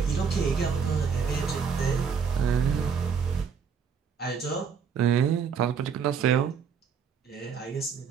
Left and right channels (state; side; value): quieter; left; 6.4 dB